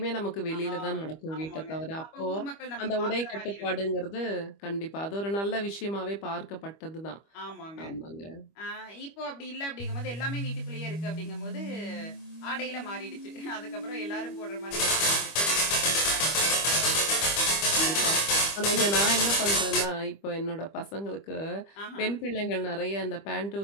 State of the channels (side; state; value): right; late; 25 ms